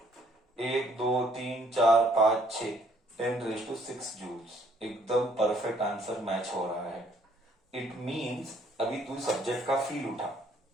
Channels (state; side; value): normal; both; correlation 0.64